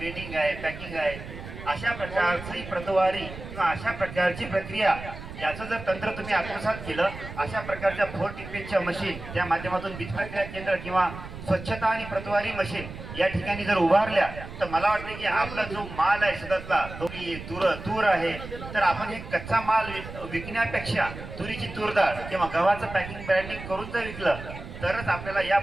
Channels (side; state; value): right; noise; rumble, 12 dB below the sound